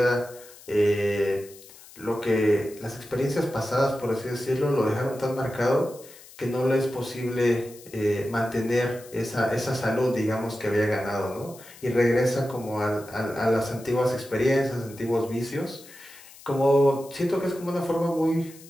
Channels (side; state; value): left; noise; hiss, 20 dB below the sound